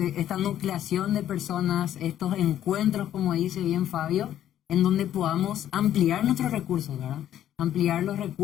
nucleación de personas, estos encuentros, como dice bien Fabio, en donde podamos ampliar nuestros recursos, ¿verdad? Ampliar los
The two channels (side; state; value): right; quieter; 11.4 dB